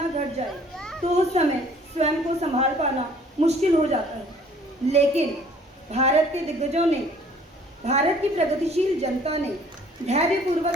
घट जाए, तो उस समय स्वयं को संभाल पाना मुश्किल हो जाता है। लेकिन भारत के दिग्गजों ने, भारत की प्रगतिशील जनता ने धैर्यपूर्वक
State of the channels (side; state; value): both; normal; correlation 0.56